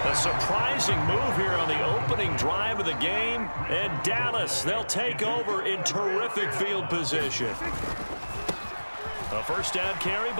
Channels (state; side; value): inverted; both; correlation -1.00